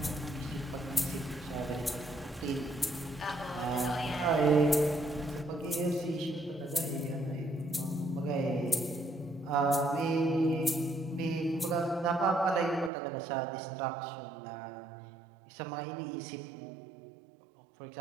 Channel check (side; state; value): left; drops out; at 12.9 s